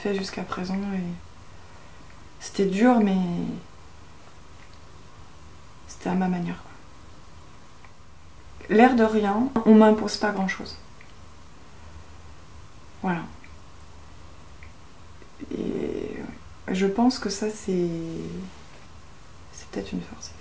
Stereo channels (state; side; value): identical; both; correlation 1.00